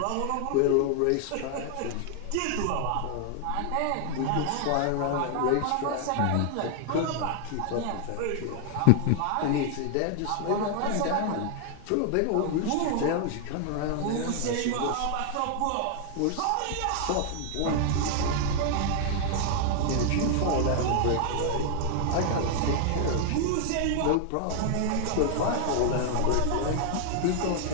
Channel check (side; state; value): both; different; correlation 0.00